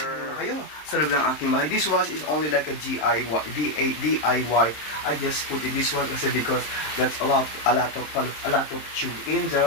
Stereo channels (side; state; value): right; late; 26 ms